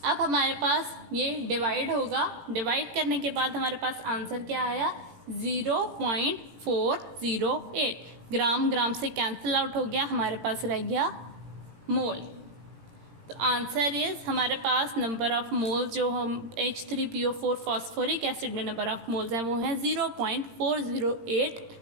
अब हमारे पास ये डिवाइड होगा, डिवाइड करने के बाद हमारे पास आंसर क्या आया 0.408। ग्राम ग्राम से कैंसिल आउट हो गया, हमारे पास रह गया मोल। तो आंसर इज़ हमारे पास नंबर ऑफ मोल्स जो हम H3PO4 फॉस्फोरिक एसिड में नंबर ऑफ मोल्स हैं वो हैं 0.408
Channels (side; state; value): left; late; 17 ms